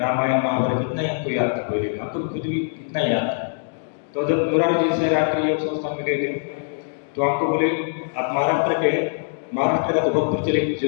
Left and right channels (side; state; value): right; silent; digital silence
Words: महाभारत इतना ही आपको याद था पहले, आपको खुद भी इतना ही याद था। तो जब मुरारजी देसाई राष्ट्रीय योग संस्थान में गए थे, तो आपको बोले आप महाराष्ट्र के, महाराष्ट्र का तो बहुत प्रचलित